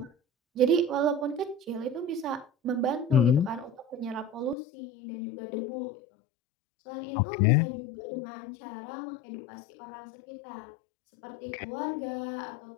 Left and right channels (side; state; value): right; drops out; at 4.5 s